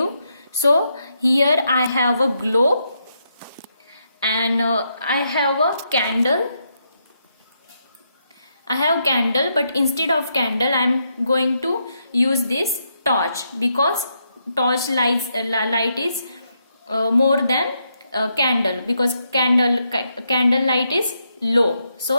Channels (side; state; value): both; inverted; correlation -0.80